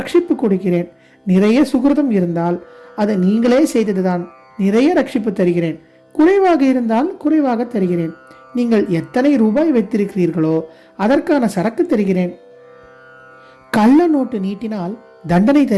கொடுக்கிறேன். நிறைய சுகிருதம் இருந்தால் அது நீங்களே செய்ததுதான், நிறைய ரட்சிப்பு தருகிறேன். குறைவாக இருந்தால் குறைவாக தருகிறேன். நீங்கள் எத்தனை ரூபாய் வைத்திருக்கிறீர்களோ அதற்கான சரக்கு தருகிறேன். கள்ள நோட்டு நீட்டினால் தண்டனை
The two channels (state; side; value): identical; both; correlation 1.00